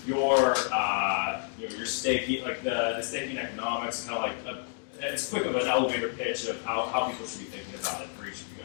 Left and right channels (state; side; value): silent; right; digital silence